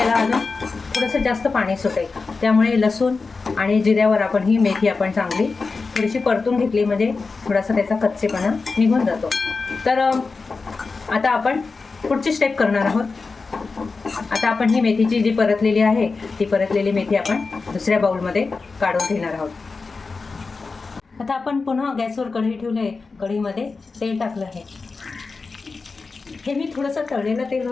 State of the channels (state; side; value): quieter; right; 4.2 dB